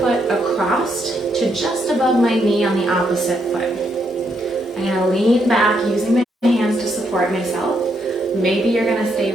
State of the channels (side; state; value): both; normal; correlation 0.77